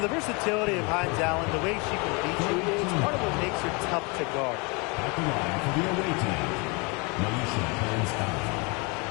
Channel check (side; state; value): right; quieter; 30.1 dB